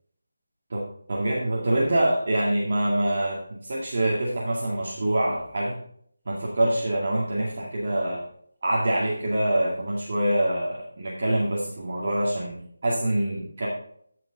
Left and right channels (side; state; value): both; inverted; correlation -0.95